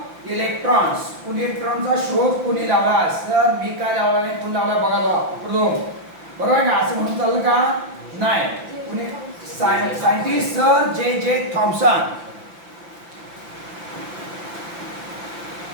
electrons. इलेक्ट्रॉनचा शोध कोणी लावला. सर मी काय लावला नाही, कोण लावला बघा बरोबर आहे का, असं म्हणून चाललं का नाही. कोणी सायंटिस्ट सर जे थॉम्सन.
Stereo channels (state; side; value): late; left; 5.8 ms